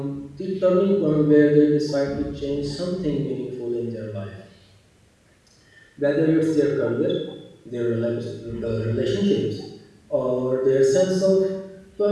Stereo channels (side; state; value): both; identical; correlation 1.00